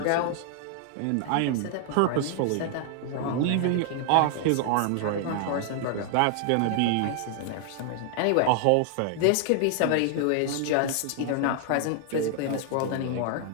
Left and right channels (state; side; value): different; both; correlation 0.00